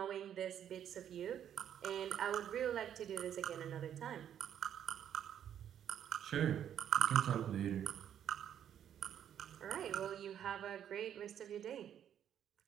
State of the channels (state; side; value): quieter; left; 9.7 dB